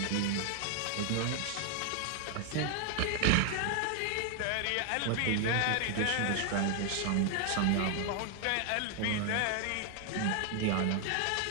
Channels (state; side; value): different; both; correlation 0.00